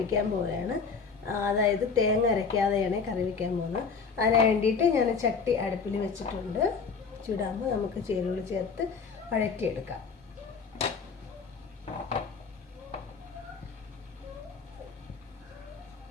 പോവുകയാണ്. അതായത് തേങ്ങ അരയ്ക്കാതെയാണ് കറി വയ്ക്കാൻ പോകുന്നത്. അതിന് വേണ്ടിയിട്ട് ഞാൻ ചട്ടി അടുപ്പിൽ വെച്ചിട്ടുണ്ട്. ചൂടാകുമ്പോൾ നമുക്ക് ചേരുവകൾ ചേർത്ത് വഴറ്റിയെടുക്കാം.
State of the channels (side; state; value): right; quieter; 5.3 dB